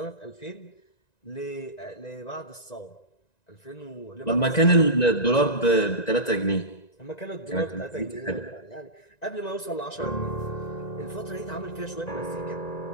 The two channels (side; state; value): right; late; 1.9 ms